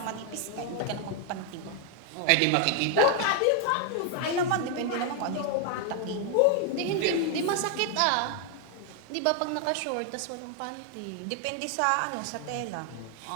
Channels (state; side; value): different; both; correlation 0.00